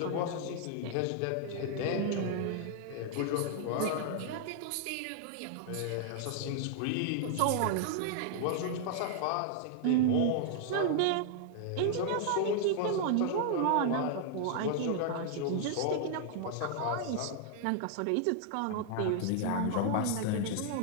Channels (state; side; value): different; both; correlation -0.01